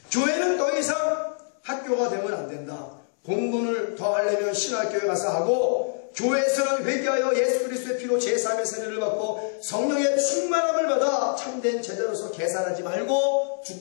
더 이상 학교가 되면 안 된다. 공부를 더 하려면 신학교에 가서 하고 교회에서는 회개하여 예수 그리스도의 피로 제3의 세례를 받고 성령의 충만함을 받아 참된 제자로서 계산하지 말고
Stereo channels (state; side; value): silent; right; 62 dB below the other